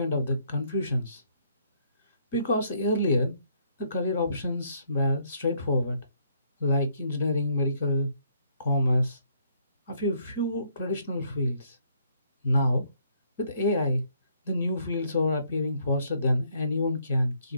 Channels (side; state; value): both; inverted; correlation -0.68